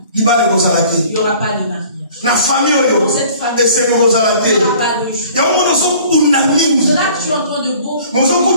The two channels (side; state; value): both; inverted; correlation -0.51